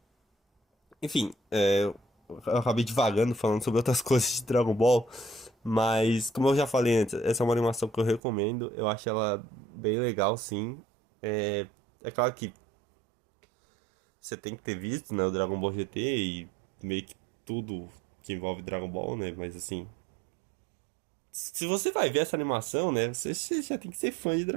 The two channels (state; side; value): drops out; left; at 8.2 s